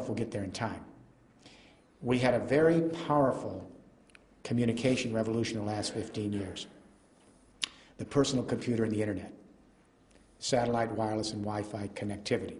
we'll get there in time. We had a very powerful communication revolution in the last 15 years. The personal computer and the internet, satellite, wireless, and Wi-Fi connectivity.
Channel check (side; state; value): both; identical; correlation 1.00